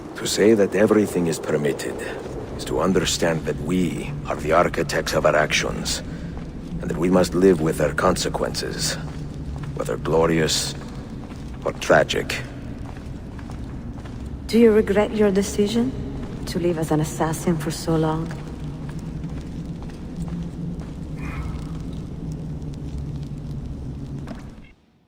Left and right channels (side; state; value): both; identical; correlation 1.00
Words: To say that everything is permitted is to understand that we are the architects of our actions, and that we must live with their consequences, whether glorious or tragic. Do you regret your decision to live as an assassin for so long?